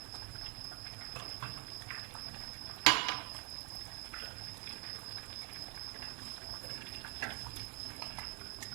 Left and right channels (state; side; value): quieter; left; 27.6 dB